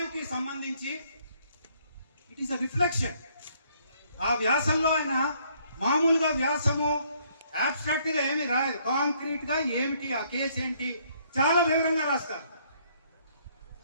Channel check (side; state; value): both; inverted; correlation -0.66